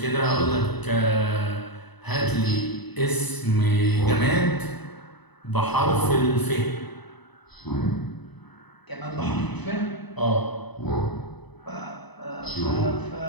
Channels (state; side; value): late; right; 0.99 ms